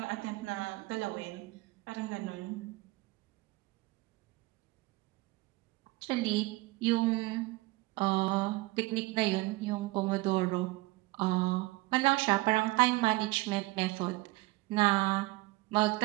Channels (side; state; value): left; quieter; 21.2 dB